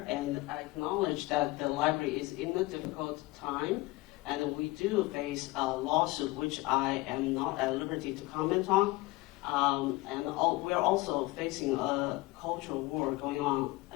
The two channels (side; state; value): right; quieter; 21.2 dB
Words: and I acknowledge that the library is in a difficult time, and we do face a lawsuit, which I am not at liberty to comment on. We're also facing a cultural war going on